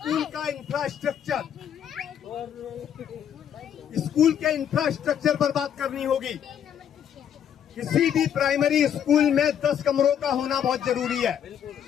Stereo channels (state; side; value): quieter; right; 9.1 dB